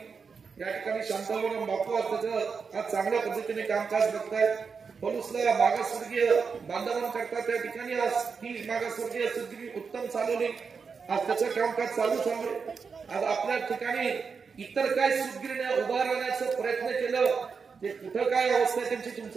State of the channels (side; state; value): left; quieter; 5.5 dB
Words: या ठिकाणी शांताराम बापू त्याचं आज चांगल्या पद्धतीने कामकाज बघतायत। पलूसला मागासवर्गीय बांधवांकरता त्या ठिकाणी आज ही मागासवर्गीय सूतगिरणी उत्तम चालवली। आज त्याचं कामकाज चालूच आहे। आज आपल्या ठिकाणी इतर काय सूतगिरण्या उभारण्याचा प्रयत्न केलं ते कुठं काय अवस्था आहे त्यांची